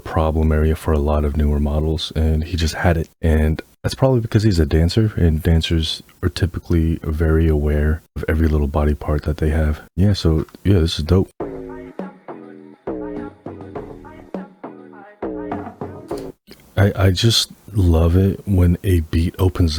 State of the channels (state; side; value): identical; both; correlation 1.00